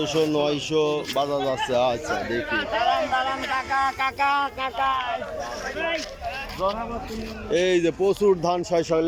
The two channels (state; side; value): identical; both; correlation 1.00